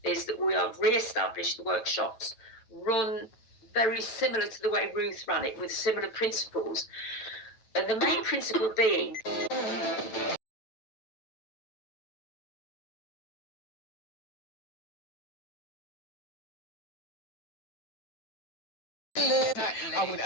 Is that we have re-established the workshops, run very similar to the way Ruth ran it, with similar principles. And the main principle being... I wouldn't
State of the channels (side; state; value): right; late; 9.2 ms